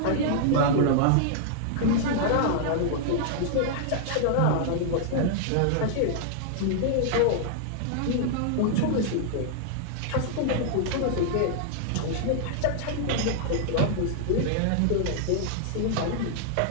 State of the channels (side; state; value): both; different; correlation -0.01